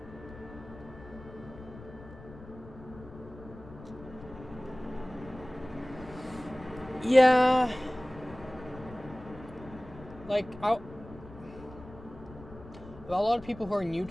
Yeah, like a lot of people who are new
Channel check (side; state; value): left; noise; rumble, 17 dB below the sound